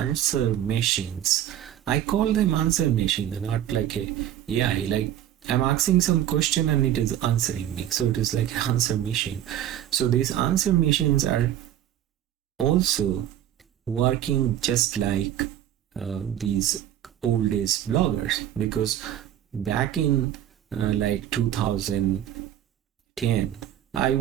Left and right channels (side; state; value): left; quieter; 11.4 dB